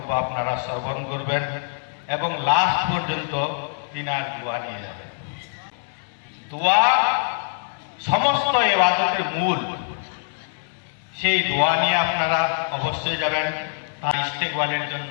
আপনারা শ্রবণ করবেন এবং লাস্ট পর্যন্ত তিনার দোয়া নিয়ে যাবেন। দোয়া সমস্ত ইবাদতের মূল, সেই দোয়া নিয়ে আপনারা অবশ্যই যাবেন। তার ইস্তেকবালের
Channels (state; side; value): silent; right; digital silence